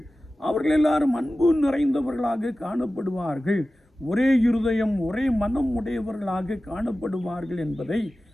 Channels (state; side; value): normal; both; correlation 0.95